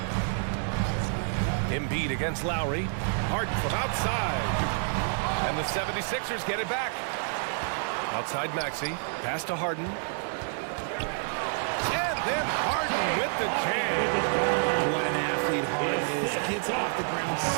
Embiid against Lowry. Harden from outside. And the 76ers get it back. Outside Maxey. Pass to Harden. Then Harden with the jam. What an athlete Harden is. Gets off the ground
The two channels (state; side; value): silent; left; 59 dB below the other